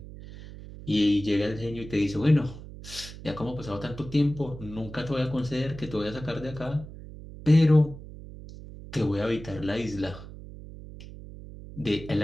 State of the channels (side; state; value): right; noise; hum, 14 dB below the sound